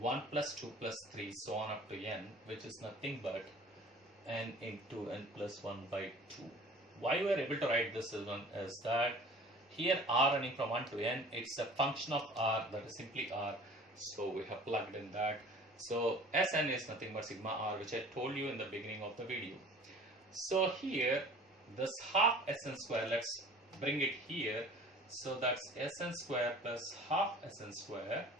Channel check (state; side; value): normal; both; correlation 0.46